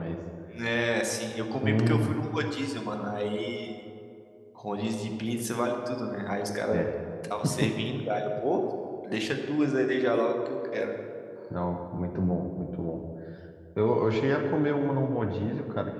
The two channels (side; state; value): both; identical; correlation 1.00